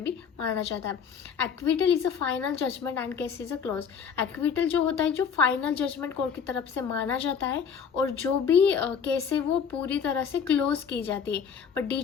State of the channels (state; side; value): quieter; right; 6.8 dB